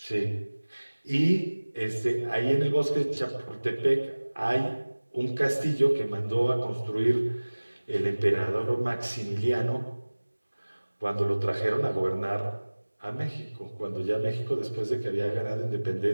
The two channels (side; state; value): both; inverted; correlation -1.00